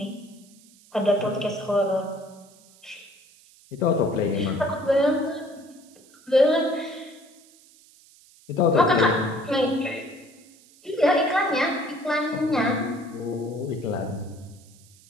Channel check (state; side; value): noise; right; hiss, 26 dB below the sound